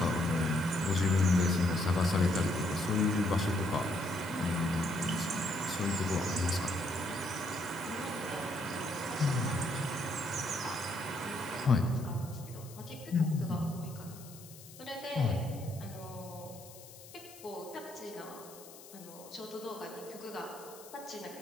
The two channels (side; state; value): left; noise; hiss, 18 dB below the sound